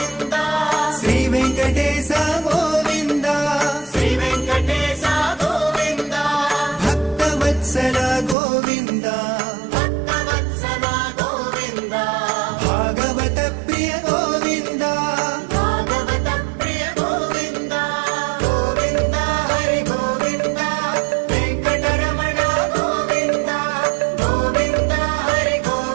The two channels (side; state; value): left; drops out; at 8.3 s